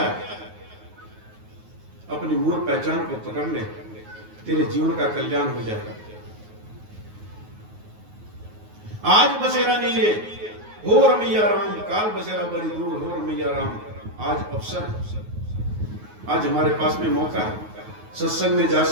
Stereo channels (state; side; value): late; left; 9.4 ms